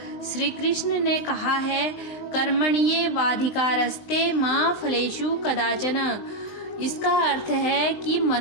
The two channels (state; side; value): late; right; 19 ms